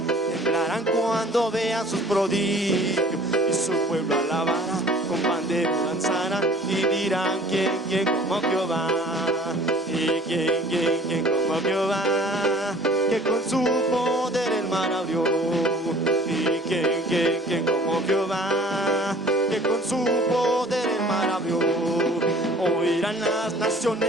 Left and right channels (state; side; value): normal; both; correlation 0.50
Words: temblarán cuando vean sus prodigios. Y su pueblo alabará, con pandero danzarán y dirán quién como Jehová. Y quién como Jehová, que con su poder el mar abrió. Y quién como Jehová, que con con su poder el mar abrió. Oirán las